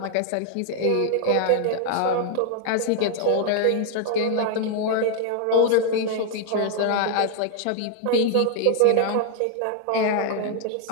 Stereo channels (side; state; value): both; different; correlation 0.00